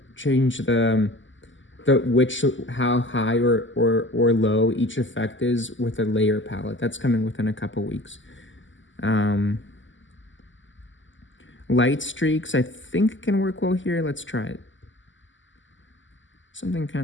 how high or low each effect is with a layer palette. That's coming within a couple weeks. Light streaks, I think can work well here. Let's try it. Something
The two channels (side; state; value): right; late; 0.55 ms